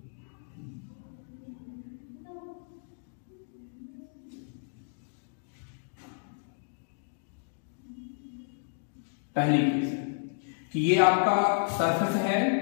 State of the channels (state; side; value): silent; right; digital silence